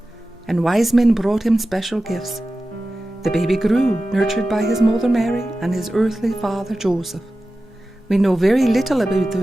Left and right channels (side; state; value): both; normal; correlation 0.94